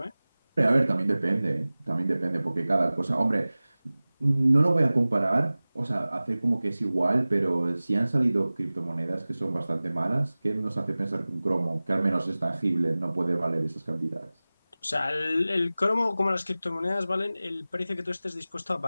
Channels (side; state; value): both; inverted; correlation -0.98